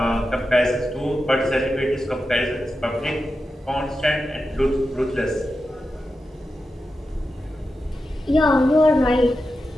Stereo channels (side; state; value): both; normal; correlation 0.90